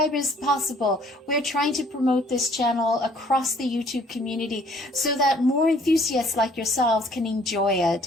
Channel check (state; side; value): normal; both; correlation 0.59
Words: possible. We're trying to promote this channel across the YouTube community so that more enthusiasts like yourselves can enjoy it.